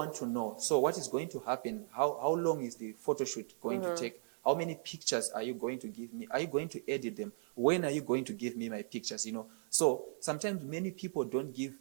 to know, so what is going to happen? How long is the photo shoot going to take? How many pictures are you going to give me? Are you going to edit them? When are you going to give me my pictures? So sometimes many people don't give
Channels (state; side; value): silent; left; digital silence